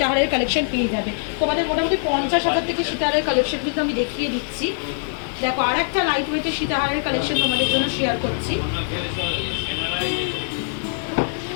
কালেকশন পেয়ে যাবে। তোমাদের মোটামুটি 50,000 থেকে সীতাহারের কালেকশন কিন্তু আমি দেখিয়ে দিচ্ছি। দেখো আর একটা লাইট ওয়েটের সীতাহারের কালেকশন তোমাদের জন্য শেয়ার করছি।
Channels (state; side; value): silent; right; digital silence